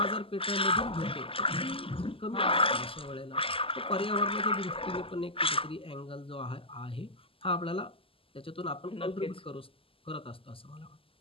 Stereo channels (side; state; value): right; late; 0.26 ms